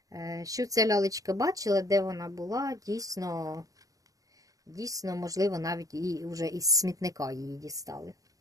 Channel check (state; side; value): late; left; 0.17 ms